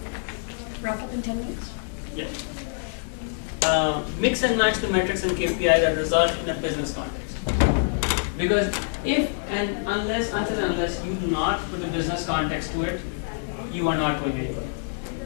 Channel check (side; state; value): right; silent; digital silence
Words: Wrap up in 10 minutes? Yeah. Mix and match the metrics and KPI that result in a business context. Because unless you do not put a business context to it, you are not going anywhere.